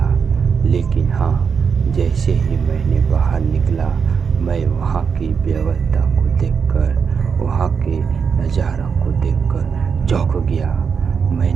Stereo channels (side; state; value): left; quieter; 6.2 dB